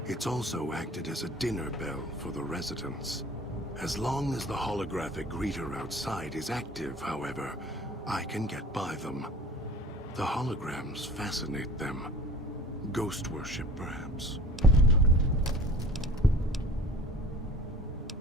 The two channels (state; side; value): normal; both; correlation 0.44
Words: it's also acted as a dinner bell for the residents. As long as the holographic greeter outside is active, however, I can get by them. The holograms fascinate them. Ghost worship, perhaps.